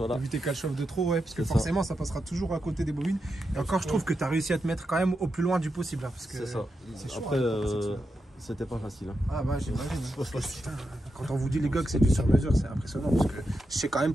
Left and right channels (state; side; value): normal; both; correlation 0.87